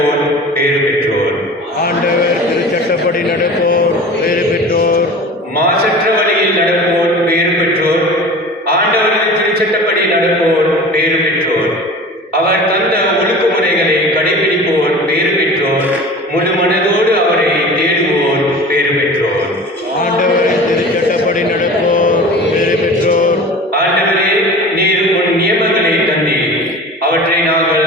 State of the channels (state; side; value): normal; both; correlation 0.38